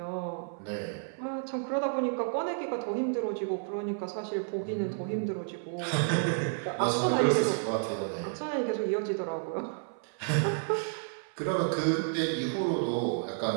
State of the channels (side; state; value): left; silent; 57 dB below the other